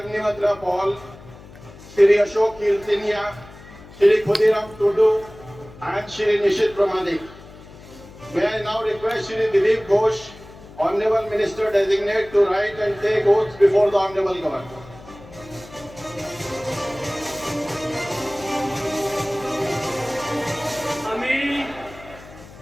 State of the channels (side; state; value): left; noise; hum, 19 dB below the sound